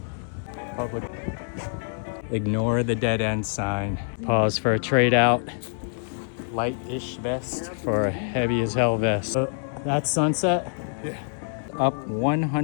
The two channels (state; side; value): silent; right; 61 dB below the other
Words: Public. Ignore the dead end sign. Pause for a trade out. Light-ish vest for a heavy as hell vest. That's sunset? Yeah. Up